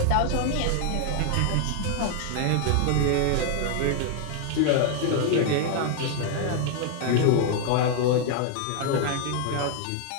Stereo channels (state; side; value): different; both; correlation 0.00